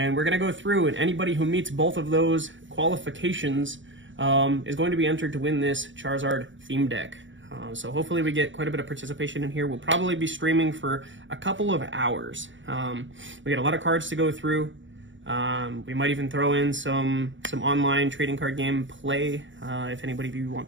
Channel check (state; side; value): late; left; 0.55 ms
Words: we're going to go through, and anybody who meets both of those qualifications is going to be entered to win this Charizard theme deck. So hopefully we get quite a bit of participation in here. We'll probably be streaming for a couple of hours. We got a lot of cards to go through. We might even throw in some online trading card game play, if anybody of you